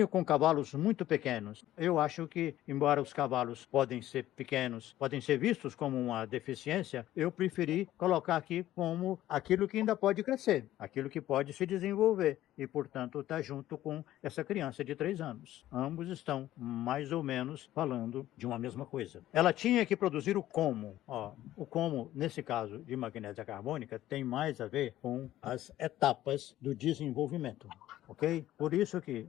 com cavalos muito pequenos. Eu acho que, embora os cavalos podem ser pequenos, podem ser vistos como uma deficiência, eu preferi colocar aqui como aquilo que ainda pode crescer, aquilo que pode se desenvolver e, portanto, está junto com essa criança de 3 anos. Ambos estão mais ou menos falando de uma mesma coisa. Ela tinha que produzir o como. O como, nesse caso de magnésia carbônica, tem mais a ver com as etapas do desenvolvimento, ok? Por isso que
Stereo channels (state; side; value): quieter; right; 13.9 dB